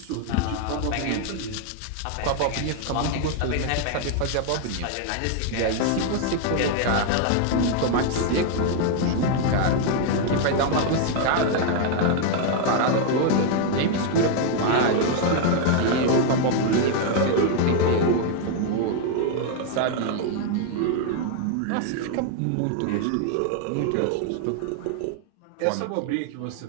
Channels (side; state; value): both; different; correlation 0.00